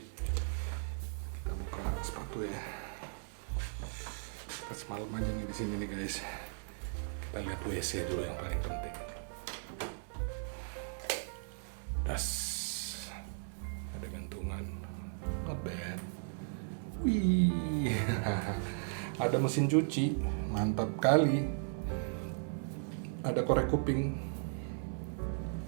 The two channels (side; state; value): left; silent; 53 dB below the other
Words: Kita buka sepatu ya. Kita semalam aja nih di sini nih guys. Kita lihat WC dulu yang paling penting. Tas. Ada gantungan. Not bad. Wih, ada mesin cuci, mantap kali. Ada korek kuping.